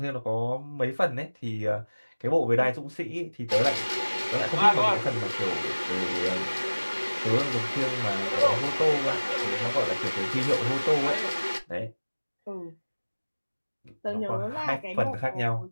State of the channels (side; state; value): both; inverted; correlation -1.00